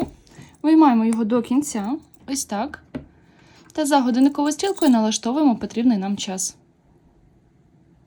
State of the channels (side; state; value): both; identical; correlation 1.00